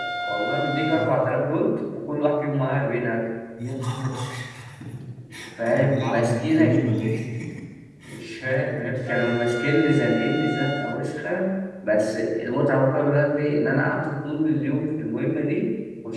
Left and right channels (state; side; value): identical; both; correlation 1.00